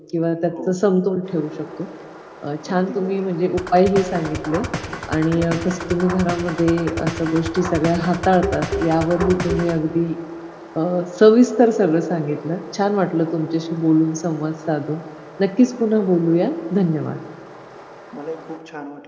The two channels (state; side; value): identical; both; correlation 1.00